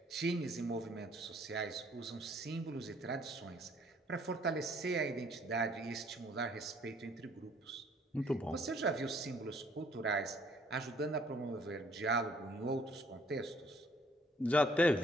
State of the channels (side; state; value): both; normal; correlation 0.61